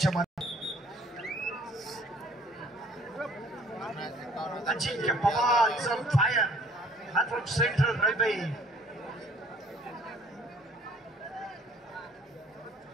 मध्ये. अजिंक्य पवार इज ऑन फायर. हा फ्रॉम सेंट्रल रेल्वे.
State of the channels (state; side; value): normal; both; correlation 0.57